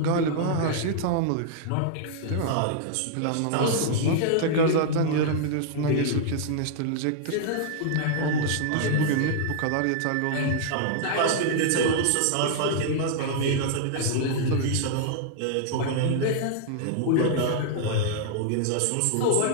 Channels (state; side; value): different; both; correlation -0.01